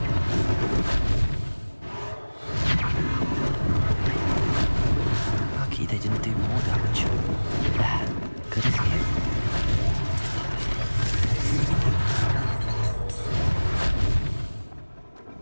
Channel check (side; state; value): both; inverted; correlation -1.00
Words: Lucky they didn't do more damage. There, good as new.